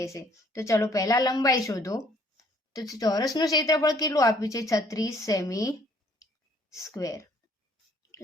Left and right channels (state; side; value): normal; both; correlation 0.61